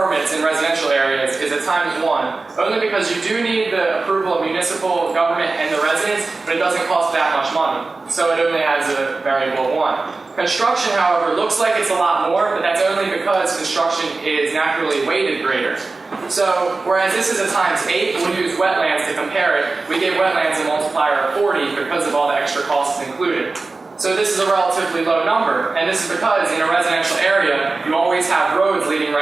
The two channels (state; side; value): quieter; left; 3.7 dB